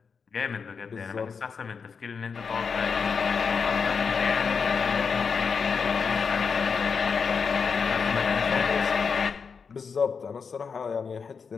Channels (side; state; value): right; quieter; 5.7 dB